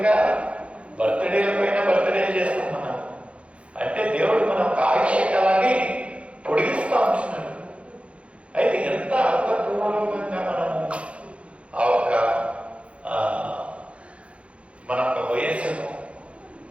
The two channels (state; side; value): late; left; 0.061 ms